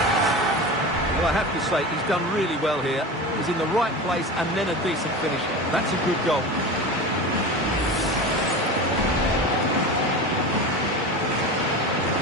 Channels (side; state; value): both; normal; correlation 0.29